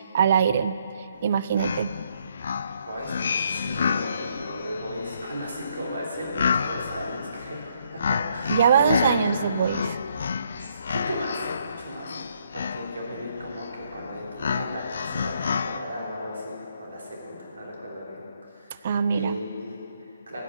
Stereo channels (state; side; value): inverted; both; correlation -0.72